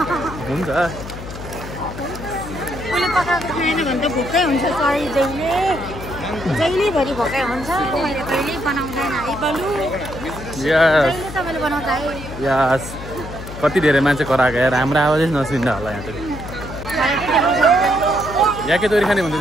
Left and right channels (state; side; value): noise; left; hum, 11 dB below the sound